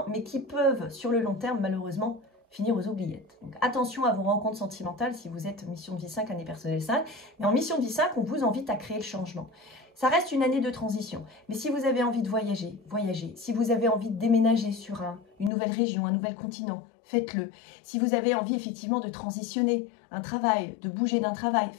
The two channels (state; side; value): drops out; right; at 15.5 s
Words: mais qui peuvent sur le long terme malheureusement finir aux oubliettes. Donc attention à vos rencontres sentimentales si vous êtes mission de vie 5, année personnelle 5. Mais en mission de vie 5, on vous invite à créer le changement. Ça reste une année de transition. Mais si vous avez envie de voyager, voyagez. Si vous avez envie de déménager sur une nouvelle région, un nouvel continent, faites-le. Si vous avez envie effectivement de transitionner un travail, de bouger d'un travail,